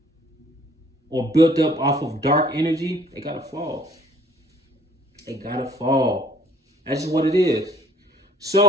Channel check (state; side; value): normal; both; correlation 0.58